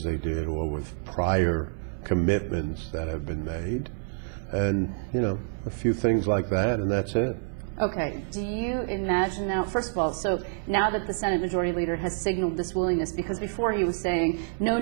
they did or with prior commitments that have been made. And, a few things like that, and that's it. Okay, do you imagine now, first of all, so now that the Senate Majority Leader has signaled this willingness, because before he was saying, no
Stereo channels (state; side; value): silent; left; digital silence